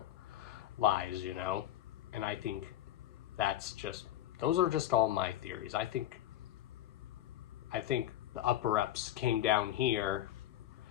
lies, you know. And I think that's just, those are just all my theories. I think the upper-ups came down here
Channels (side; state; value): right; quieter; 12.7 dB